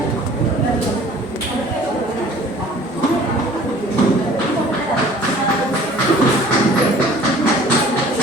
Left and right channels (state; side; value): normal; both; correlation 0.50